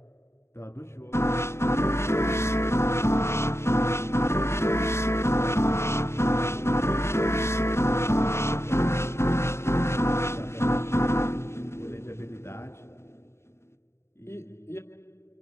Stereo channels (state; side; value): late; right; 0.13 ms